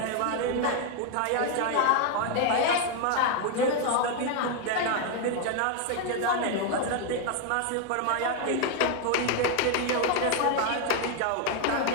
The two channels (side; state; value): both; different; correlation 0.01